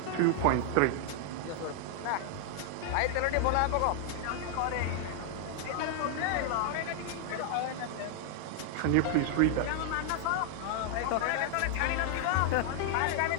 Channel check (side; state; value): both; different; correlation 0.00